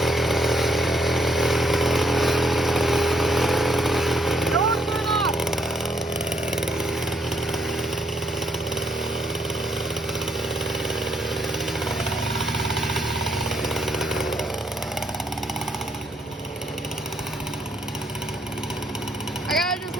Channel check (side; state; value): both; normal; correlation 0.73